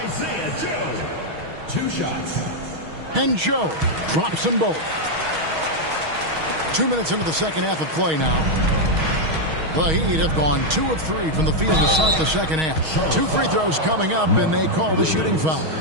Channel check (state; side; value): late; left; 6.3 ms